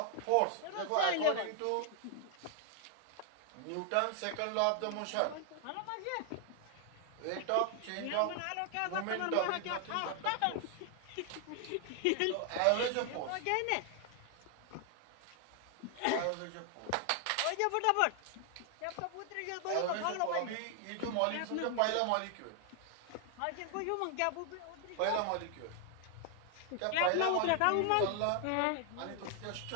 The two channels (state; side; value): different; both; correlation 0.00